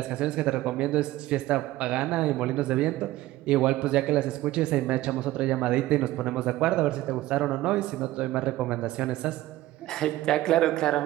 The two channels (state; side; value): quieter; left; 16.2 dB